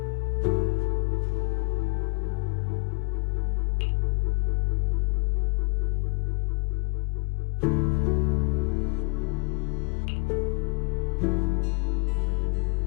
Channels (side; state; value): right; quieter; 30.0 dB